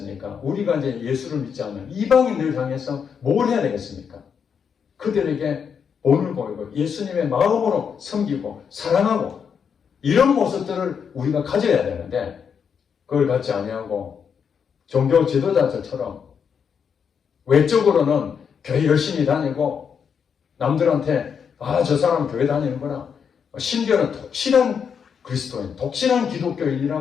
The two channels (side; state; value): right; quieter; 6.9 dB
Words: 우리가 이제 예수를 믿지 않는 이방인들 향해서 뭘 해야 되겠습니까? 그들에게 본을 보이고 예수님의 마음으로 섬기고 사랑하고 이런 모습들을 우리가 가져야 되는데 그걸 갖지 아니하고 종교 지도자들처럼 외적으로는 교회 열심히 다니고 남들한테 저 사람 교회 다니는구나. 심지어는 독실한 그리스도인, 독실한